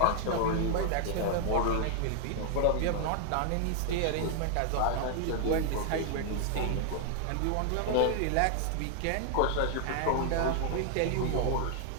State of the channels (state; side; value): different; both; correlation 0.00